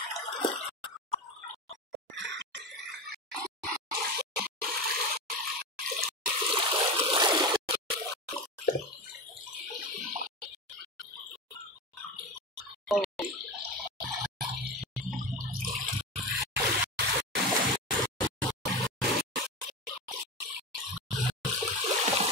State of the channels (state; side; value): normal; both; correlation 0.22